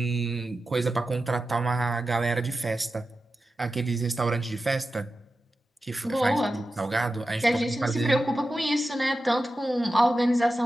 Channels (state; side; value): normal; both; correlation 0.92